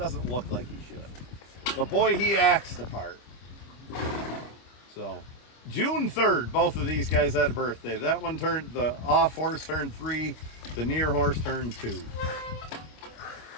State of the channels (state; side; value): late; right; 25 ms